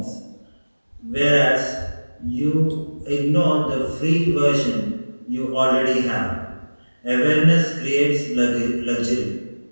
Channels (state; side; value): inverted; both; correlation -1.00